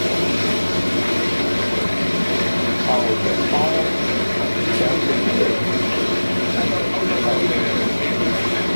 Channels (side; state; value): both; inverted; correlation -1.00